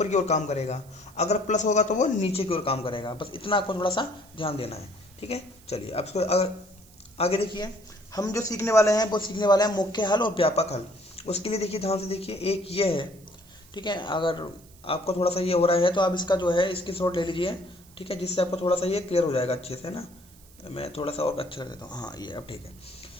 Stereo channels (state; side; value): noise; right; hiss, 25 dB below the sound